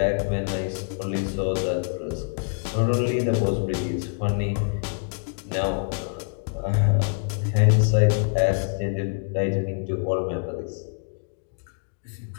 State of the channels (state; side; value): silent; right; digital silence